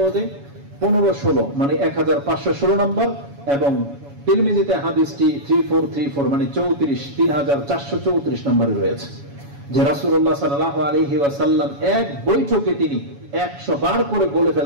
1516 মানে 1516 নম্বর এবং তিরমিজিতে হাদিসটি 3434 মানে 3434 নম্বরে রয়েছে, যে রাসূলুল্লাহ সাল্লাল্লাহু আলাইহি ওয়াসাল্লাম এক বৈঠকে তিনি 100 বার করে বলে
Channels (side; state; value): left; late; 7.1 ms